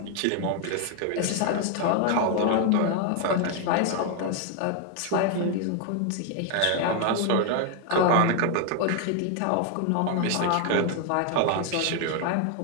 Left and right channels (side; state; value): both; different; correlation 0.01